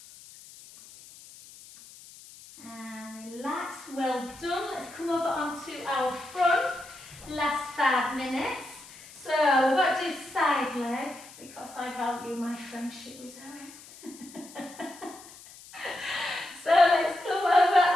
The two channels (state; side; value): noise; left; hiss, 19 dB below the sound